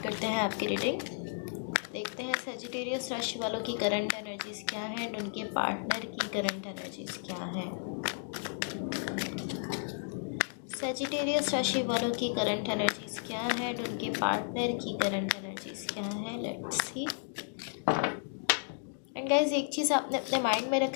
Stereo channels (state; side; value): silent; right; digital silence